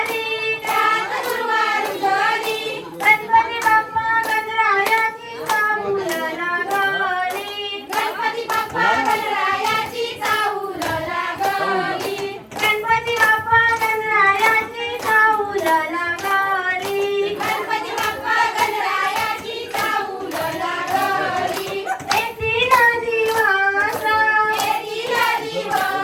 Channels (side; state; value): both; identical; correlation 1.00